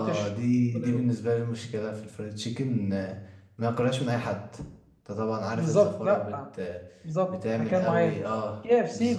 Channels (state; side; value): identical; both; correlation 1.00